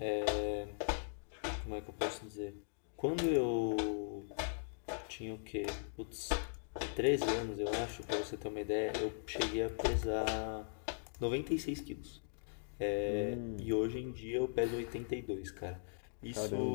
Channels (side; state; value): right; silent; digital silence